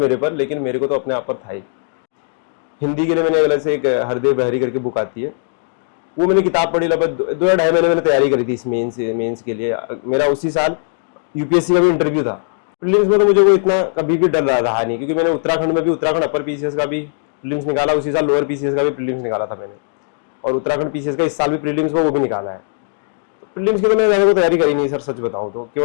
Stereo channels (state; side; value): silent; right; digital silence